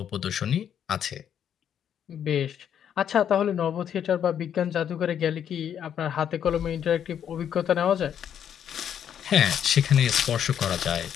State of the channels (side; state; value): right; quieter; 9.1 dB